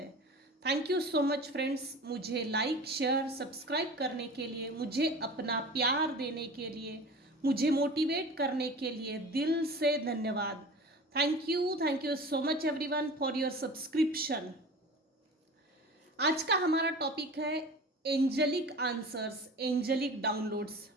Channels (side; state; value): both; normal; correlation 0.37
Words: Thank you so much friends, मुझे लाइक शेयर सब्सक्राइब करने के लिए, मुझे अपना प्यार देने के लिए, मुझे मोटिवेट करने के लिए दिल से धन्यवाद। Thank you so much everyone for your subscription. आज का हमारा टॉपिक है एंजलिक आंसर्स, एंजलिक डाउनलोड्स।